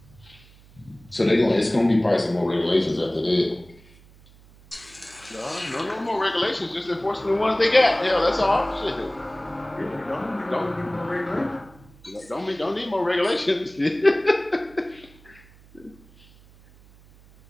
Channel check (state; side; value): noise; right; hum, 25 dB below the sound